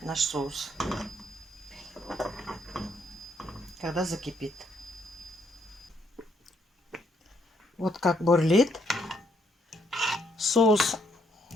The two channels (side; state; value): both; normal; correlation 0.72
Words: наш соус, когда закипит. Вот как бурлит соус.